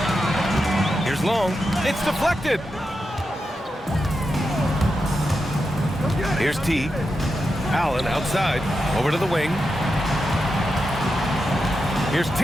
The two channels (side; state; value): both; normal; correlation 0.88